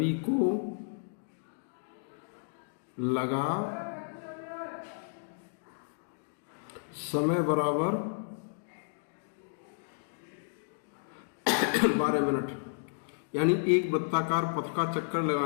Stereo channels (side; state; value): right; silent; digital silence